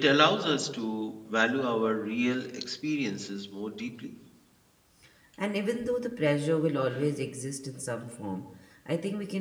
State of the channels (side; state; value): both; identical; correlation 1.00